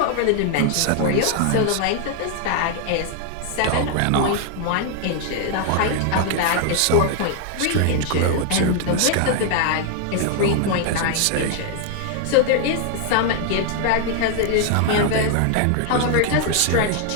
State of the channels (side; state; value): both; different; correlation 0.00